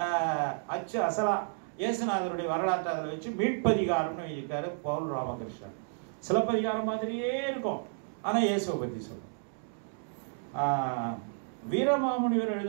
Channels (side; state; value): left; silent; digital silence